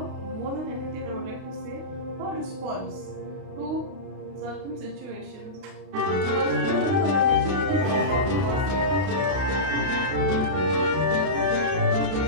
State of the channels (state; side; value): late; left; 31 ms